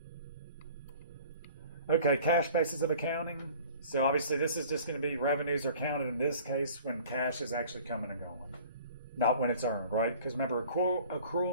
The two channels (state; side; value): inverted; both; correlation -0.48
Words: Okay, cash basis of accounting. So obviously this is just going to be revenues are counted in this case when cash is actually coming and going, not when it's earned, right? Because remember,